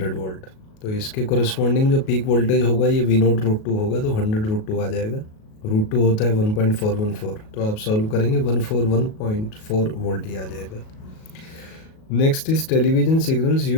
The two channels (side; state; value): right; late; 37 ms